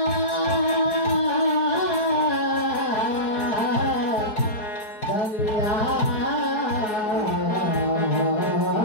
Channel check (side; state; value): right; late; 4.7 ms